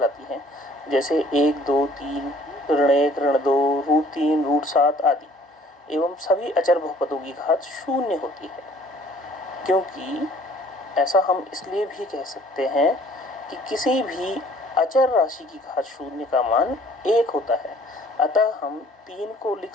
हैं। जैसे 1, 2, 3, ऋण 1, ऋण 2, √3, √7 आदि। एवं सभी अचर बहुपदों की घात शून्य होती है, क्योंकि ऐसा हम इसलिए भी कह सकते हैं कि किसी भी अचर राशि की घात शून्य का मान 1 होता है। अतः हम 3 को लिख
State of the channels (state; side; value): normal; both; correlation 0.55